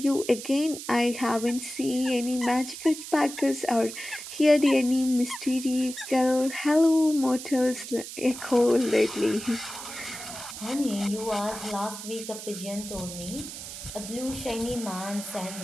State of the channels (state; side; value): noise; right; hiss, 10 dB below the sound